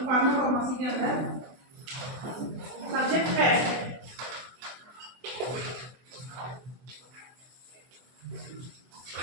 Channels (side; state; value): left; late; 24 ms